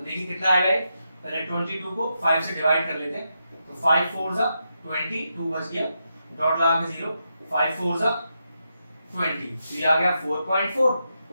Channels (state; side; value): inverted; both; correlation -0.85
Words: देखिए कितना आ गया, पहले 22 को 5 से डिवाइड कर लेते हैं, तो 5 4 जा 20, 2 बच गया, डॉट लगा के 0, 5 4 जा 20, तो ये आ गया 4.4,